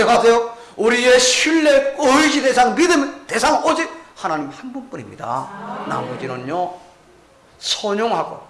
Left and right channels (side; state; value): both; identical; correlation 1.00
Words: 우리의 신뢰, 의지 대상, 믿음 대상 오직 하나님 한 분뿐입니다. 나머지는요 선용하고